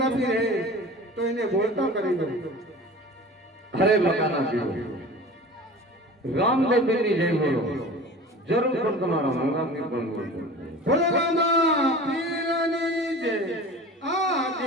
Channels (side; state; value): both; normal; correlation 0.38